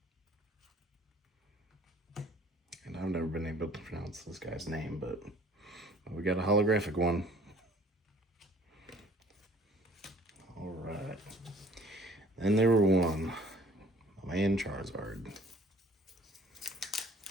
and I've never been able to pronounce this guy's name, but we got a holographic one. All right. Then there were one, my man Charizard.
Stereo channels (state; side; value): normal; both; correlation 0.54